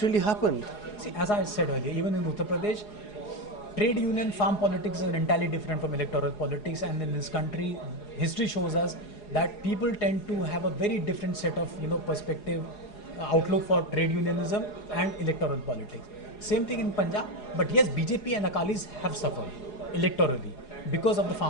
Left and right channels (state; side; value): late; right; 4.8 ms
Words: really happened? See, as I said earlier, even in Uttar Pradesh, trade union farm politics is entirely different from electoral politics, and in this country, history shows us that people tend to have a very different set of perspective, outlook for trade unionism and electoral politics. Same thing in Punjab, but yes, BJP and Akalis have suffered electorally because of the